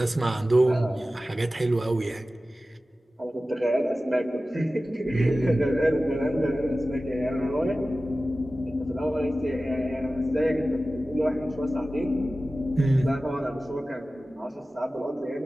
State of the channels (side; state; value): both; normal; correlation 0.96